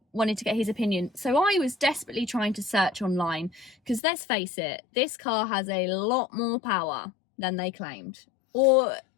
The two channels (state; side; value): drops out; right; at 4.0 s